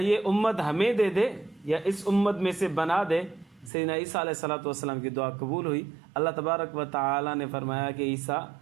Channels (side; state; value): left; drops out; at 3.7 s